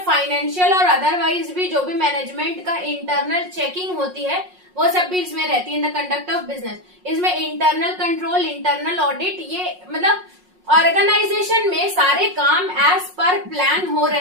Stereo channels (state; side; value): late; left; 5.5 ms